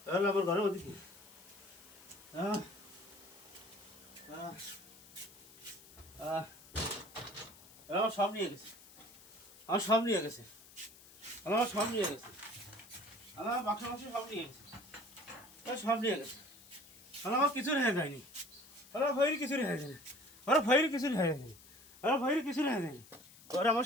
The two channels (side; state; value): left; noise; hiss, 21 dB below the sound